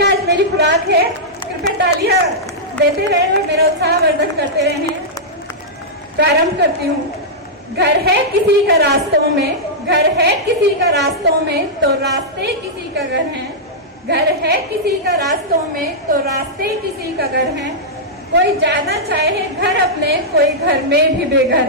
आज मेरी खुराक है। कृपया तालियां देते रहे और मेरा उत्साह वर्धन करते रहे। प्रारंभ करती हूँ। घर है किसी का रास्तों में, घर है किसी का रास्तों में, तो रास्ते किसी का घर है। घर है किसी का रास्तों में, तो रास्ते किसी का घर है। कोई जाना चाहे घर अपने, कोई घर में भी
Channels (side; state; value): both; normal; correlation -0.10